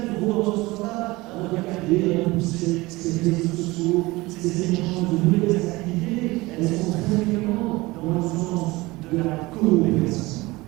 vont dans ce sens-là regarder, repousser ces réseaux sociaux, ces échanges de nouvelles activités, elles sont très fréquemment dans le sens de la coopération.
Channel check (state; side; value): quieter; left; 21.3 dB